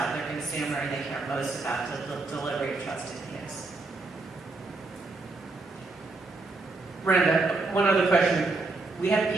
their consumer and they care most about the delivery of trusted news. Randa, one other question. We have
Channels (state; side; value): quieter; left; 3.5 dB